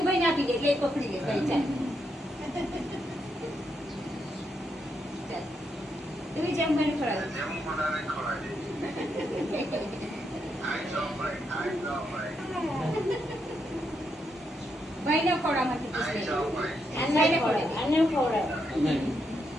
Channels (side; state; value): both; normal; correlation 0.80